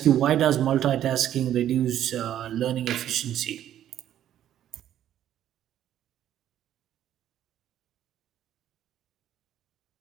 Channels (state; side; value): quieter; left; 11.3 dB